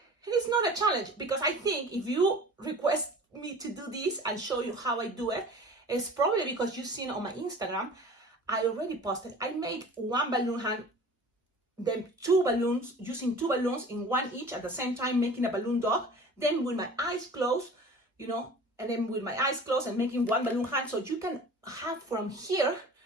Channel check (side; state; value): both; normal; correlation 0.42